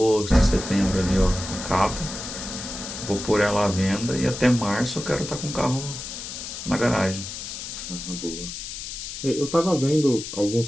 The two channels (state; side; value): noise; left; hiss, 8 dB below the sound